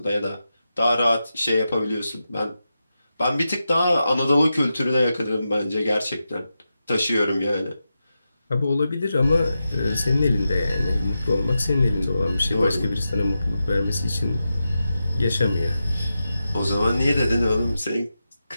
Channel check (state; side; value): inverted; both; correlation -0.90